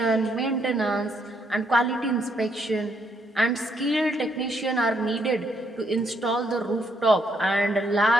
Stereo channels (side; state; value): both; normal; correlation 0.73